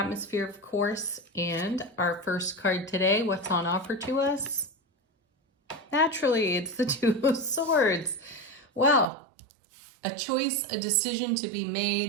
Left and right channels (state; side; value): drops out; left; at 9.1 s